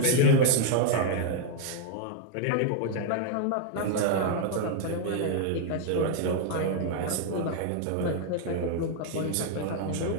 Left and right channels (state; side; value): different; both; correlation 0.00